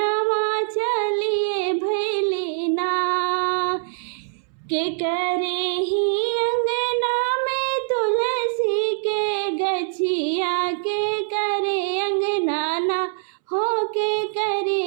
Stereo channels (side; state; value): left; silent; 63 dB below the other